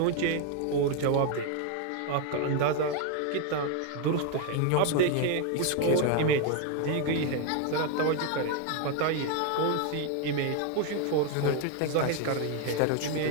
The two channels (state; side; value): different; both; correlation 0.01